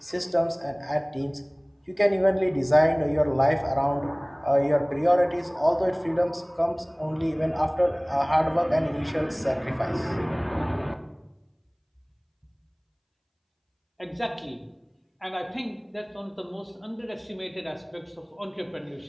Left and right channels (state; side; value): identical; both; correlation 1.00